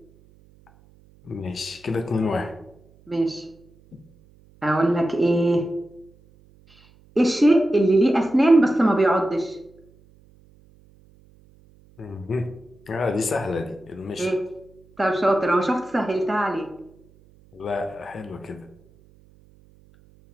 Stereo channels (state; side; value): noise; right; hum, 29 dB below the sound